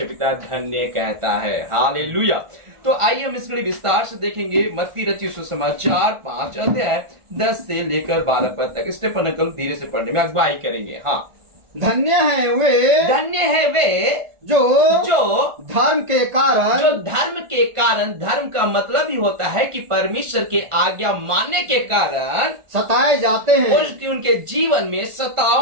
पिता धन्य कहता है। हालेलुया। तो आइए हम इसके लिए विस्तार से देखेंगे। मत्ती रचित सुसमाचार 5 अध्याय 10 से लेकर 12 पद तक। स्टेफन अंकल धीरे से पढ़ने में अगुवाई करेंगे। हाँ। धन्य है वे जो धर्म के कारण, धर्म का मतलब ही होता है कि परमेश्वर के आज्ञा मानने के कारण सताए जाते हैं, उनके जीवन में सताव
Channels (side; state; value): left; late; 1.4 ms